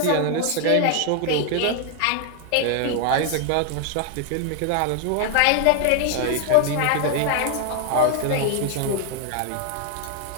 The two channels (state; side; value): different; both; correlation 0.00